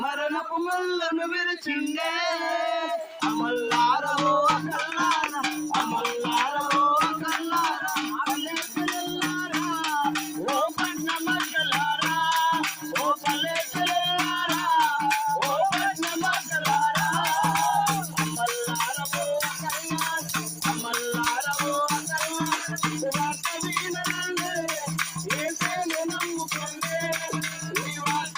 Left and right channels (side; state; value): both; identical; correlation 1.00